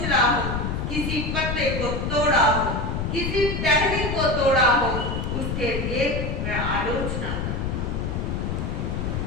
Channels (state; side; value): noise; left; rumble, 2 dB below the sound